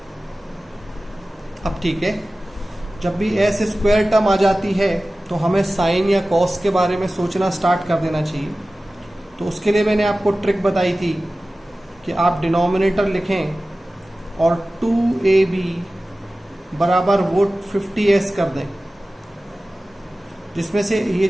अब ठीक है, जब भी S स्क्वायर टर्म आ जाती है तो हमें साइन या कॉस के बारे में सोचना स्टार्ट कर देना चाहिए. तो उसके लिए मैंने आपको ट्रिक बताई थी कि आप डिनोमिनेटर लिखें और 2AB बराबर वो 50S कर दें, जिसमें से ये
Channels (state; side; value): normal; both; correlation 0.96